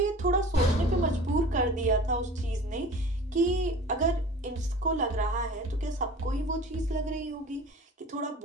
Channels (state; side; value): normal; both; correlation 0.41